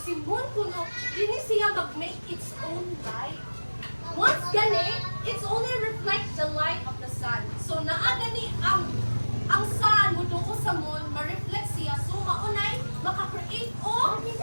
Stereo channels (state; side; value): inverted; both; correlation -1.00